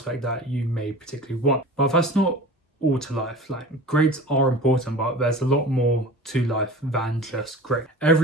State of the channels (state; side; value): normal; both; correlation 0.37